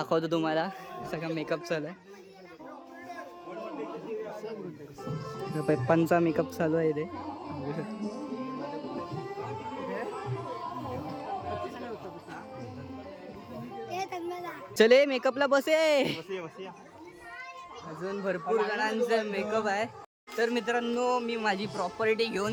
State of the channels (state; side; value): identical; both; correlation 1.00